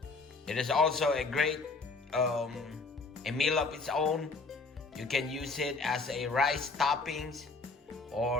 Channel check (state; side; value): quieter; right; 3.8 dB